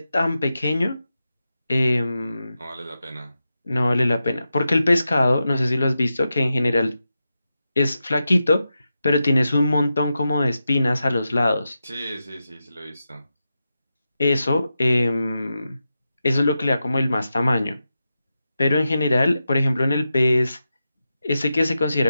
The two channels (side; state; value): both; inverted; correlation -0.90